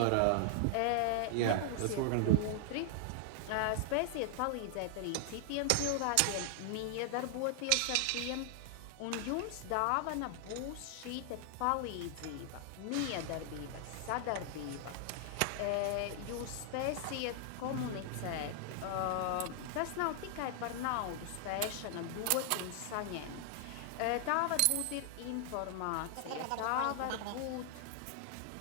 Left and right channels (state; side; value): different; both; correlation 0.00